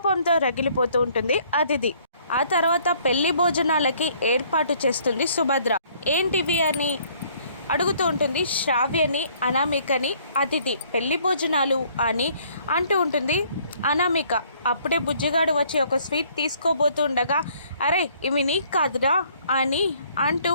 రగిలిపోతూ ఉంటుంది అతిథి. ఆ తర్వాత పెళ్లి భోజనాలకి ఏర్పాటు చేస్తుంది సుభద్ర. ఏంటివి అని అడుగుతూ ఉంటుంది శ్రావ్యని, అనామికని అతిథి. పెళ్లి భోజనాలు అని అంటూ ఉంటుంది అనామిక. అప్పుడే బుజ్జిగాడు వచ్చి ఒక స్వీట్ తీసుకోబోతుండగా అరే ఇవి నీకు కాదురా అని అంటూ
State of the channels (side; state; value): both; inverted; correlation -0.61